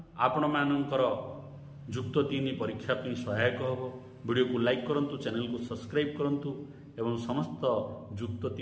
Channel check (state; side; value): identical; both; correlation 1.00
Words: आपण मानकर युक्त 3 परीक्षा पे सहायक होबो। वीडियो को लाइक करंतु, चैनल को सब्सक्राइब करंतु एवं समस्त युक्त